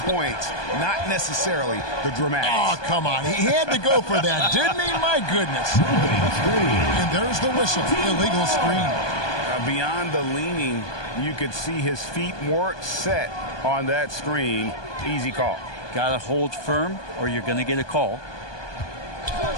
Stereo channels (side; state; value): right; late; 1.2 ms